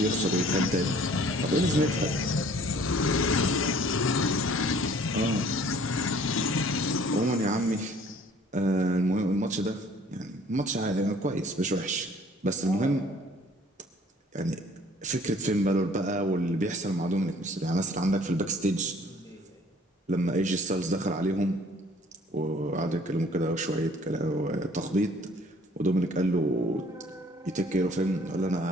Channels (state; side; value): normal; both; correlation 0.55